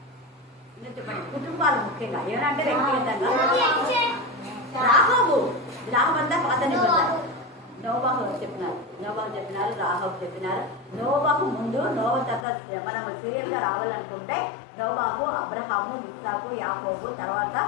ఇంకా చెప్పండి. కుటుంబాలు ముఖ్యంగా యోనా అంటే వ్యక్తిగతంగా. రాహాబు అంతా పాత నిబంధన. నోవాహు చెప్పినారు, రాహాబు చెప్పినారు. నోవాహు ముందు తర్వాత మనం సీరియల్ గా రావాలనుకుంటే నోవాహు, అబ్రహాము, ఇస్సాకు, యాకోబు, తర్వాత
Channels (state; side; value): drops out; right; at 12.5 s